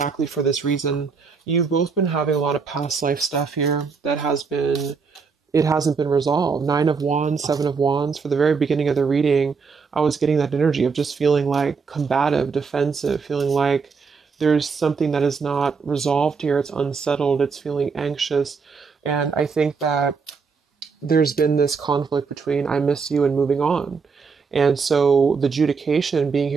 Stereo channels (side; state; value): left; quieter; 5.2 dB